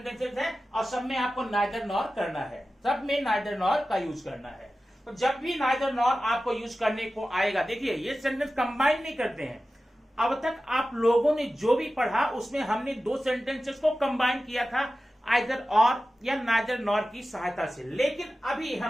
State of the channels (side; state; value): both; normal; correlation 0.94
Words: हैं और सब में आपको नाइदर नॉर करना है, सब में नाइदर नॉर का यूज करना है। तो जब भी नाइदर नॉर आपको यूज करने को आएगा, देखिए ये सेंटेंस कंबाइन नहीं करते हैं। अब तक आप लोगों ने जो भी पढ़ा उसमें हमने 2 सेंटेंसेस को कंबाइन किया था, आइदर और या नाइदर नॉर की सहायता से। लेकिन अभी